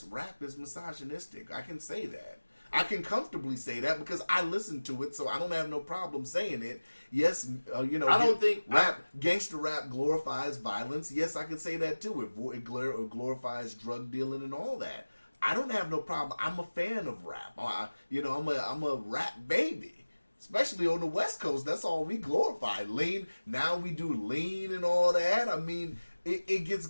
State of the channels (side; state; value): both; inverted; correlation -1.00